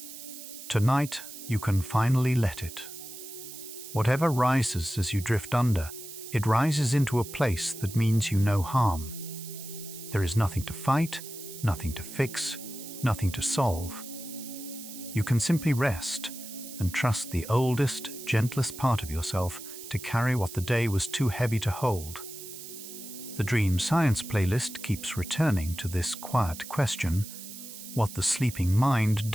Tonight, you can finally let it. Whatever rises as you drift under, it rises into a place that means you no harm. There is nothing to fight, nothing to fix, nothing to solve. You can simply rest and trust the oldest, gentlest part of yourself to carry what the day was too heavy to hold. The Dream Science playlist keeps returning to this quiet question, what the sleeping mind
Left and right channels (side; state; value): right; noise; hiss, 12 dB below the sound